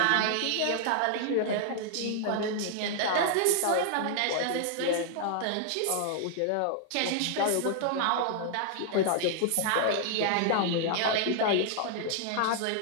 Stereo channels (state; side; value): different; both; correlation -0.01